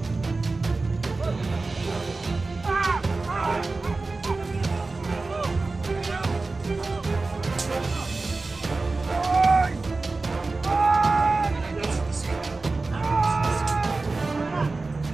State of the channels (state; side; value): quieter; left; 3.6 dB